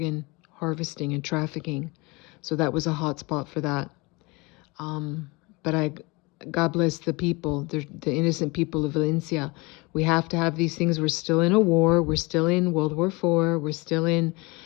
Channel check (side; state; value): right; quieter; 25.6 dB